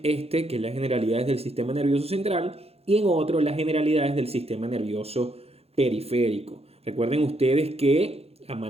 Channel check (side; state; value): left; late; 0.29 ms